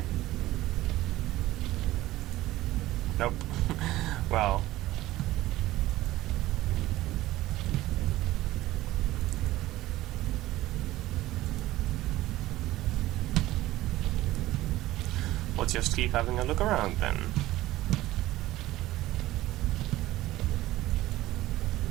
Nope. Well. We'll just keep having a look around then.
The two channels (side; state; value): left; quieter; 16.4 dB